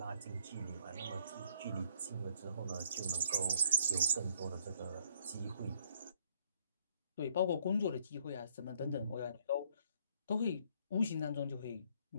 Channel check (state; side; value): inverted; both; correlation -0.65